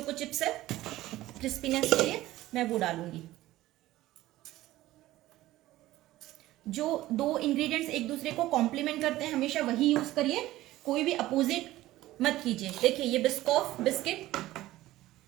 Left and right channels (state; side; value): quieter; left; 16.1 dB